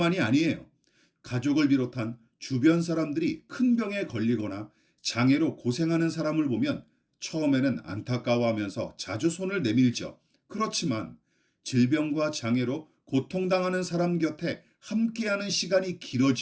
아니에요. 가족을 비롯한 주변 사람들이 큰 병에 걸리거나 장애로 고생하는 사람을 보면 처음에는 안타까워하면서 자주 손을 내밀죠. 그렇지만 질병과 장애로 고통당하는 사람 곁에 함께하는 시간이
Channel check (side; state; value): both; identical; correlation 1.00